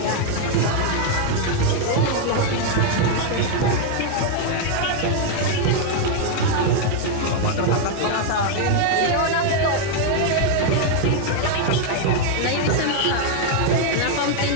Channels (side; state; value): both; different; correlation 0.00